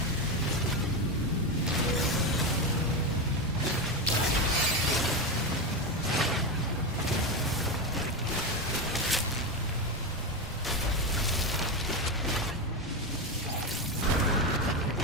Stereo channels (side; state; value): both; normal; correlation 0.14